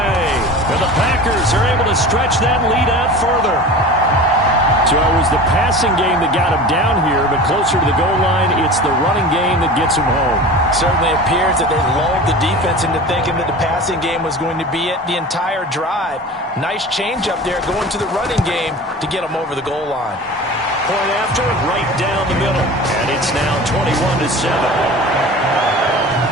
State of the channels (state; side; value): normal; both; correlation 0.36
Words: And the Packers are able to stretch that lead out further. So it was the passing game that got him down here, but closer to the goal line, it's the running game that gets him home. Certainly appears that they lulled the defense into thinking that the passing game was going to be it the entire drive. Nice change up there going to the running game to get them over the goal line. Point after, right down the middle. And it's now 21-7.